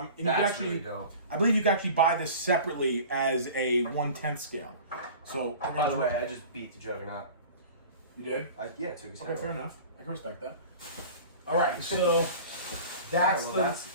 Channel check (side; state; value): both; inverted; correlation -0.40